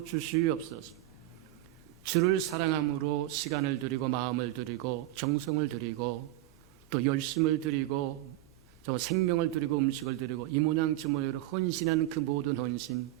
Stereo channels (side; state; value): left; quieter; 15.4 dB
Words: 주시옵소서. 주를 사랑함으로 시간을 드리고 마음을 드리고 정성을 드리고 또 열심을 드리고 생명을 드리고 음식을 드리고 이 모양 저 모양으로 헌신하는 그 모든 헌신